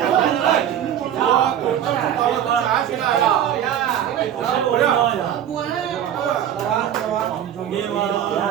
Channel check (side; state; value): left; quieter; 10.2 dB